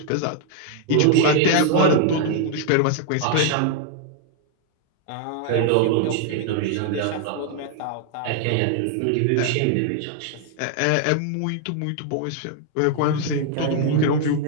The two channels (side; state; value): both; different; correlation 0.00